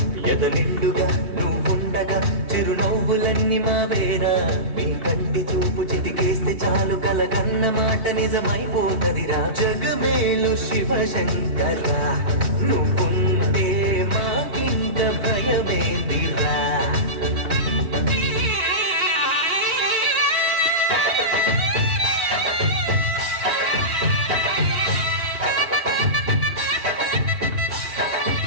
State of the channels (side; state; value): left; late; 3.1 ms